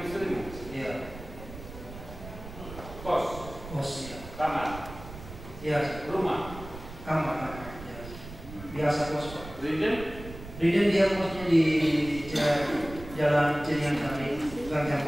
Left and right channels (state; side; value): noise; right; rumble, 14 dB below the sound